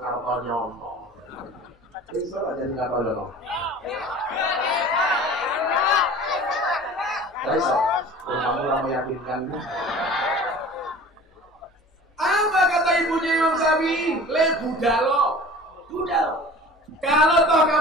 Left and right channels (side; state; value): both; normal; correlation 0.42